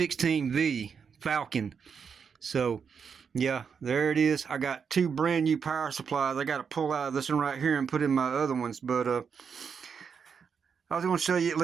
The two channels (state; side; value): quieter; left; 6.4 dB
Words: Falcon. So, yeah, there it is. I got two brand new power supplies. I got to pull out of this one right here and put in my other ones. But I was going to show you at